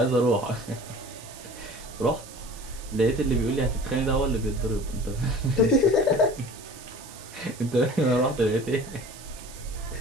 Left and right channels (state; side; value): noise; right; hiss, 17 dB below the sound